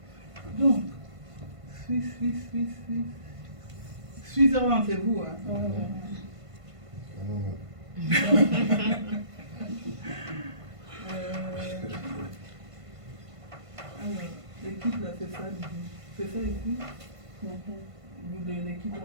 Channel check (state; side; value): late; left; 1.5 ms